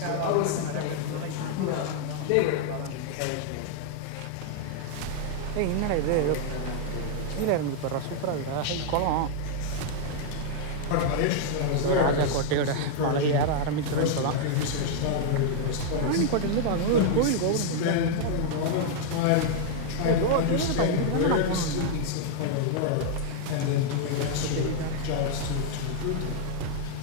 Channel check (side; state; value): both; different; correlation 0.00